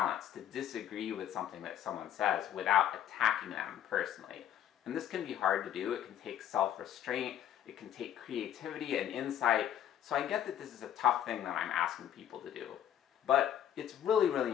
to disagree with something that someone says without attacking them personally. And this can be hard to do. It can take self-restraint, it can take creativity and insight. So I get that this is a tough thing that I'm asking people to do. But it's really,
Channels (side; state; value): right; quieter; 10.3 dB